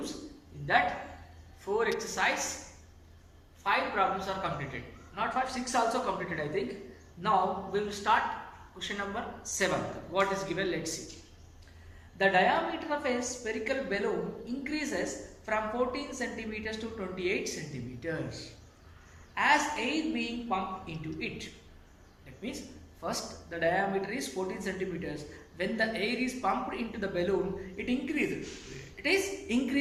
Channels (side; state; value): both; identical; correlation 1.00